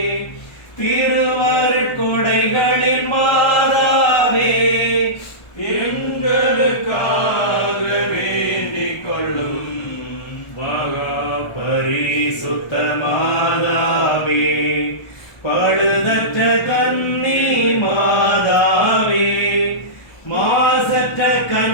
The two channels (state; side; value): late; right; 1.3 ms